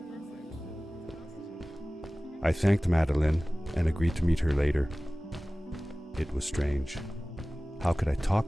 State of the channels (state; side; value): normal; both; correlation 0.98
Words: I thanked Madeline and agreed to meet her later. It was strange. How could I